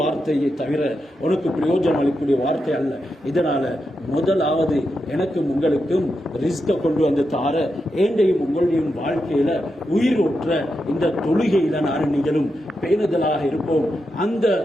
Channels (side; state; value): both; normal; correlation 0.87